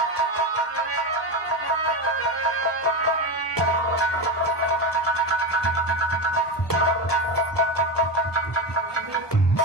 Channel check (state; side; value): normal; both; correlation 0.16